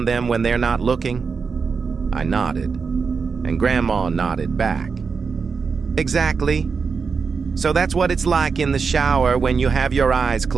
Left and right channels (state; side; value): quieter; left; 5.3 dB